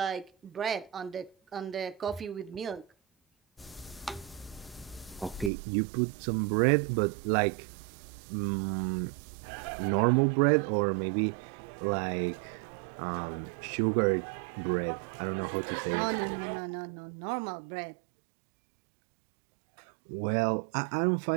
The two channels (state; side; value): drops out; left; at 5.5 s